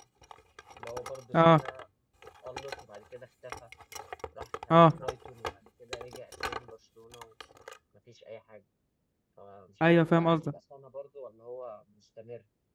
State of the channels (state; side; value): identical; both; correlation 1.00